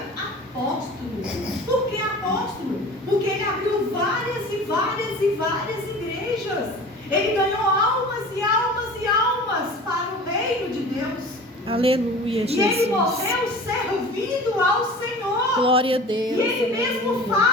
Por que apóstolo? Porque ele abriu várias e várias e várias igrejas. Ele ganhou almas e almas e almas para o reino de Deus. Aleluia, E ele Jesus. morreu servindo ao Senhor. Glória a Deus. E ele mesmo Aleluia.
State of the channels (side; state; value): both; normal; correlation 0.40